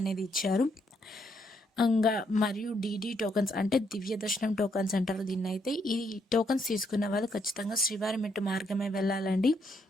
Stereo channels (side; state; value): both; normal; correlation 0.74